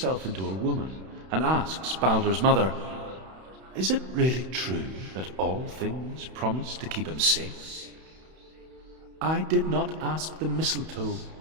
into a woman and asks Baldur's mother, "Is it really true that all things promise to keep him safe?" "I did not ask the mistletoe,"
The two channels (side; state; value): left; late; 31 ms